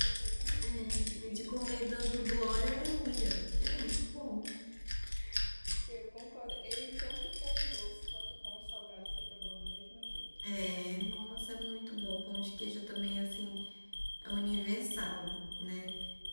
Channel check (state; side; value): inverted; both; correlation -1.00